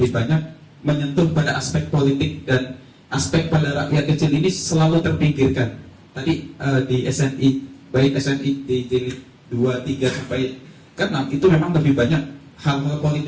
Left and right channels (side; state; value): both; identical; correlation 1.00